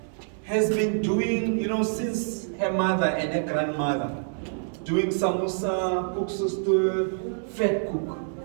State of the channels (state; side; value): silent; left; digital silence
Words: has been doing, since her mother and her grandmother, doing samosa, koeksoestoor, fat cook.